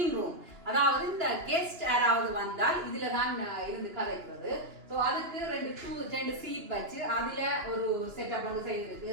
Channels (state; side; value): late; left; 2.9 ms